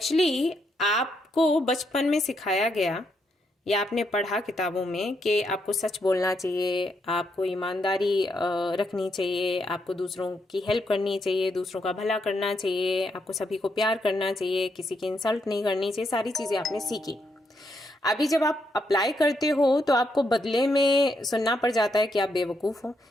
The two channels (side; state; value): both; normal; correlation 0.79